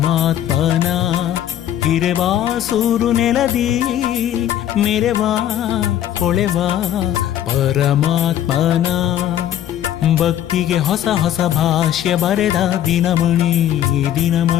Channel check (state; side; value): quieter; right; 11.3 dB